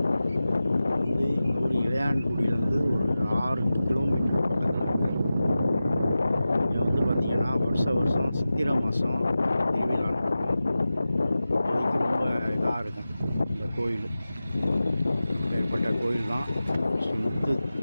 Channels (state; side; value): inverted; both; correlation -0.95